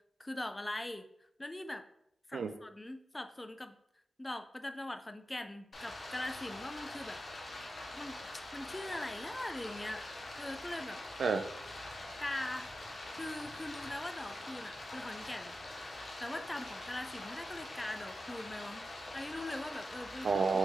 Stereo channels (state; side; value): normal; both; correlation 0.90